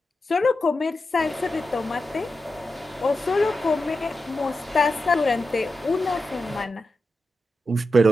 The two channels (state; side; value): normal; both; correlation 0.90